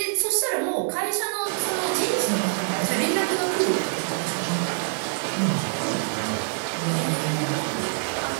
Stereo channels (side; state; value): left; silent; 62 dB below the other